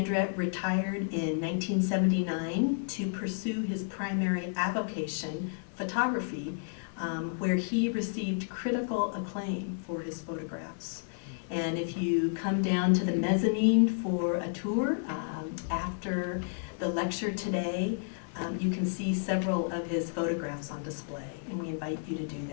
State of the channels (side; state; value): right; silent; 57 dB below the other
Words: retired in 1979 to pursue his primary avocation, photography, where he received critical acclaim for his photographs. And if you come down to the mezzanine for a tour after the lecture today, you can see several of his photographs on display, and we invite you to do